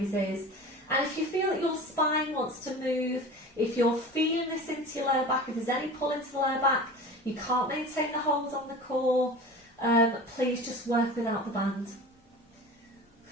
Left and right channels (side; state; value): both; normal; correlation 0.36